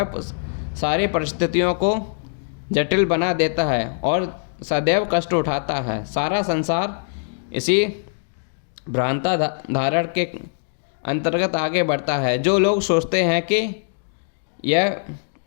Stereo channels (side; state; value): right; silent; digital silence